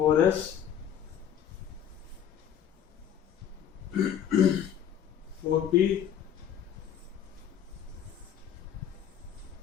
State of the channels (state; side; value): quieter; right; 9.3 dB